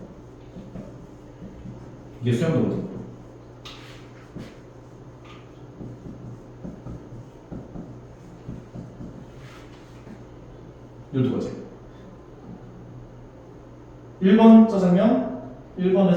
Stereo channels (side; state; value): both; identical; correlation 1.00